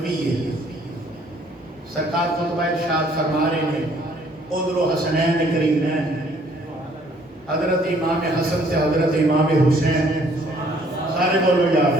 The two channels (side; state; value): both; normal; correlation 0.61